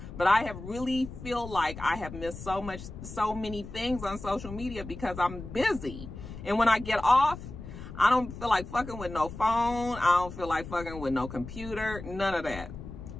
But I have really feel like I have missed so many things on social media because I'm busy. And when I get off, I don't feel like fucking with no phone. I don't feel like fucking with no computer, none of that.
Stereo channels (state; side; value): noise; left; rumble, 11 dB below the sound